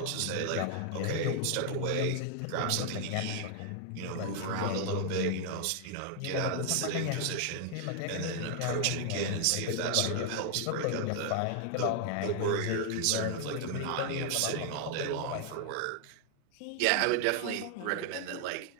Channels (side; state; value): both; different; correlation 0.00